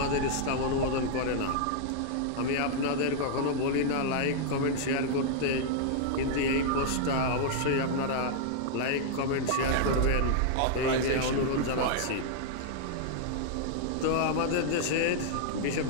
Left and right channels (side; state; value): both; different; correlation -0.01